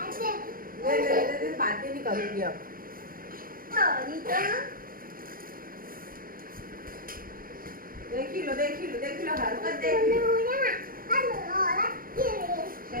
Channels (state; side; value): late; left; 0.41 ms